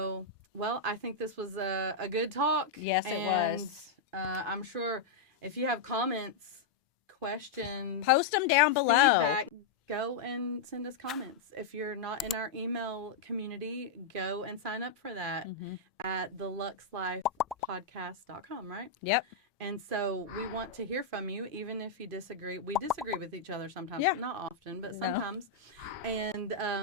right. Well, I think this was a good talk. Yes, it was. And I'm sure if you have comments, questions, post them down below. Feedback, go and send us comments. If you're not in our email community, go and sign up for that at theluxlifepodcast.com, right? Yep. And so we want to hear from you, even if you disagree. We disagree with each other sometimes, not often, but sometimes. And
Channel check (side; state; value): right; quieter; 4.6 dB